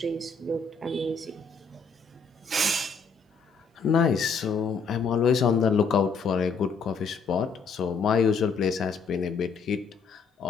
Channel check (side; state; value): right; quieter; 5.0 dB